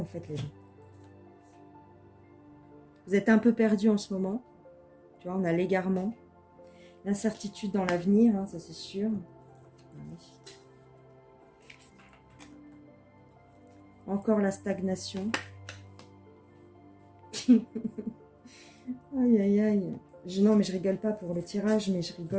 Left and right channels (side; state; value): both; identical; correlation 1.00